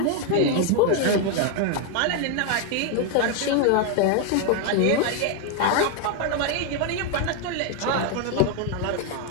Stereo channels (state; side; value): different; both; correlation 0.01